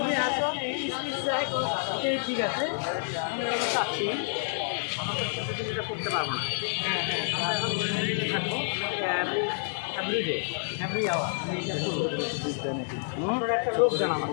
ঠিক আছে আমরা করতে পারবো না। আমরা এখন থাকবো এভরিডে এভরি আওয়ার আপনারা একটা লোক জানা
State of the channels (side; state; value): right; silent; digital silence